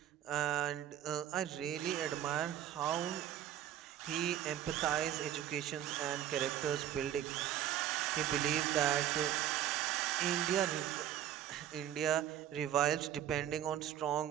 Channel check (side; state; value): left; quieter; 11.3 dB